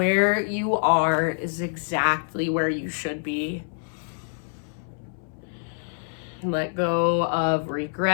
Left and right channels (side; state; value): right; silent; 61 dB below the other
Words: you are is exactly where you should be. Let go of